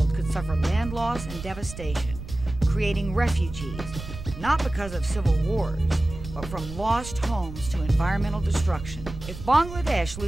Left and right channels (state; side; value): noise; right; rumble, 11 dB below the sound